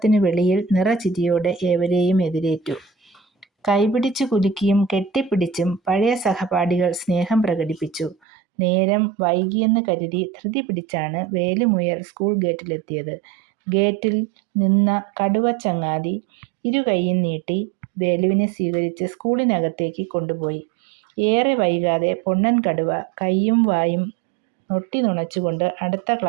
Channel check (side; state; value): left; drops out; at 8.2 s